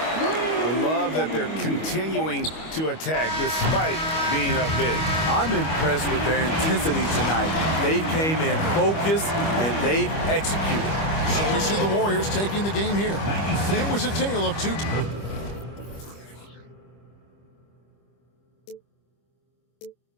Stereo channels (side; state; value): right; late; 25 ms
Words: love that they're continuing to attack despite being up big. I'm impressed with their intensity tonight. They came in focused and they've executed. So we see the Warriors taking the game here. It was a tale of two.